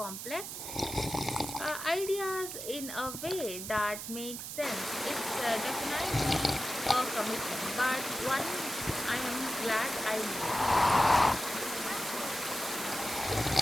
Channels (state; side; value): noise; right; hiss, 7 dB below the sound